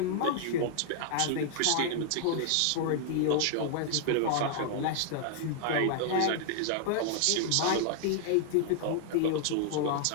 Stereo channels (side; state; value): both; different; correlation -0.01